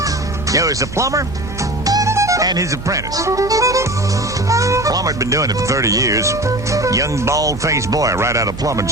there was a plumber and his apprentice. Plumber had been doing it for 30 years. Young, bald-faced boy right out of plumbing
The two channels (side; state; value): right; noise; hum, 12 dB below the sound